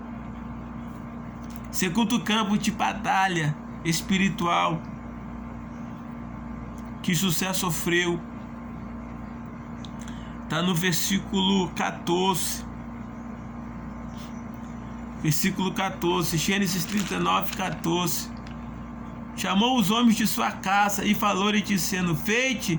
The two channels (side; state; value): both; identical; correlation 1.00